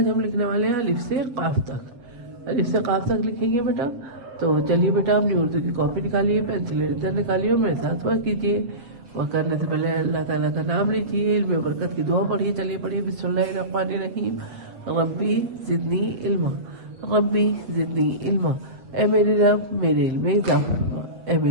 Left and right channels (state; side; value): late; left; 7.8 ms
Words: हम लिखने वाले हैं अलिफ से काफ तक। अलिफ से काफ तक लिखेंगे बेटा। तो चलिए बेटा, अपनी उर्दू की कॉपी निकालिए, पेंसिल इधर निकालिए और मेरे साथ वर्क कीजिए। वर्क करने से पहले अल्लाह ताला का नाम लीजिए, इल्म बरकत की दुआ पढ़िए। चलिए पढ़िए, बिस्मिल्लाहिर्रहमानिर्रहीम। रब्बी ज़िदनी इल्मा, रब्बी ज़िदनी इल्मा। ए मेरे रब, मेरे इल्म में इजाफा फरमा। ए